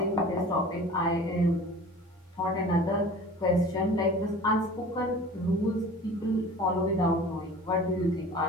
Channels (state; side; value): normal; both; correlation 0.42